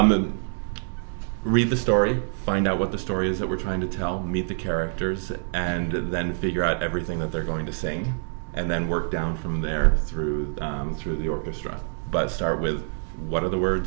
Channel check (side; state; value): left; silent; 61 dB below the other